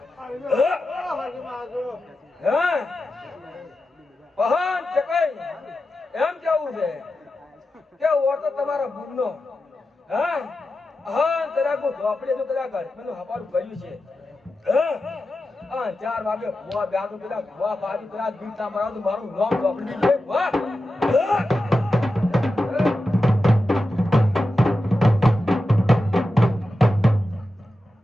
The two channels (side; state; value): both; normal; correlation 0.91